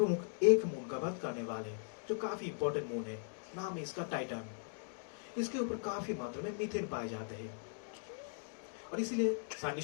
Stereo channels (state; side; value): silent; right; digital silence